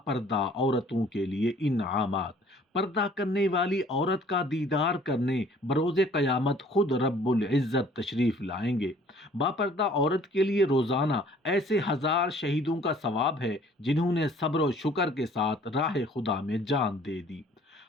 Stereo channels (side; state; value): both; normal; correlation 0.55